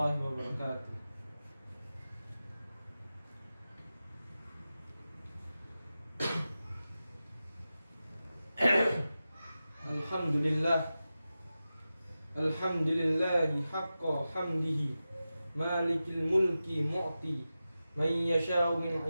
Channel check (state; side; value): inverted; both; correlation -0.93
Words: wabarakatuh. Alhamdulillah, alhamdulillahi haqqa hamdihi, malikil mulki mu'ti man yasha'u min